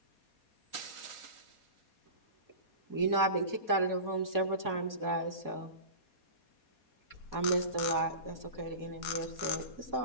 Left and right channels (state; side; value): late; right; 4.2 ms